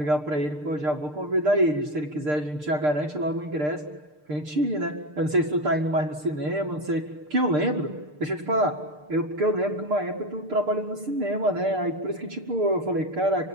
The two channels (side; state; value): left; late; 6.7 ms